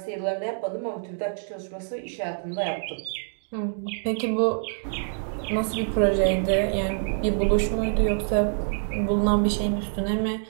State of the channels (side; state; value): left; silent; digital silence